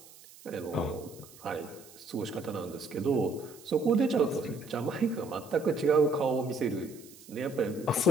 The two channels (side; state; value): right; noise; hiss, 21 dB below the sound